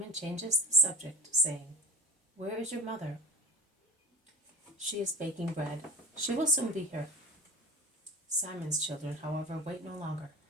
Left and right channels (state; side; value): normal; both; correlation 0.34